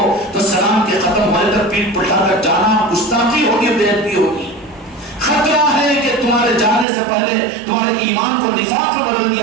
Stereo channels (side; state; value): left; drops out; at 6.9 s